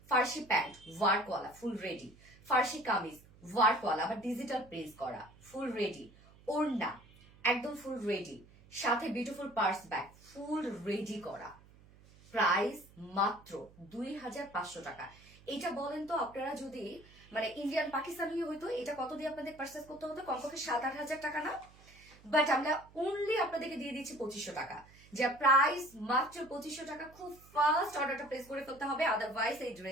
ফার্সি প্যান্ট ওয়ার্কওয়ালা ফুল রেডি, ফার্সি কামিজ ওয়ার্কওয়ালা আবার ডিজিটাল প্রিন্ট করা ফুল রেডি, ওড়না একদম ফুল রেডি, সাথে beautiful purse bag full ready করা, প্রাইস মাত্র 2500 টাকা। এটা বলেন তো আপনারা যদি মানে ইন্ডিয়ান পাকিস্তানি হইতো এটা কত দিয়ে আপনাদের পারচেস করতে হতো? কমপক্ষে 7-8 হাজার টাকা না? বাট আমরা অনলি আপনাদেরকে দিয়ে দিচ্ছি 2500 টাকা, যা প্রাইস মাত্র 2500 টাকা। খুব ফাস্ট অর্ডারটা প্লেস করে ফেলতে হবে, আদারওয়াইজ এই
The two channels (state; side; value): noise; right; hum, 24 dB below the sound